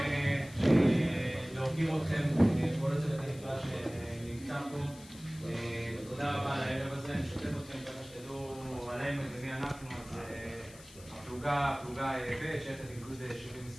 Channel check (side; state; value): left; noise; hiss, 20 dB below the sound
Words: להוקיר אתכם, כל הצוות הנפלא שנמצא פה. תודה רבה על הערב הזה, אני משתף אתכם ככה שתדעו עלינו ומי אנחנו. אז הפלוגה ב' שייכת לגדוד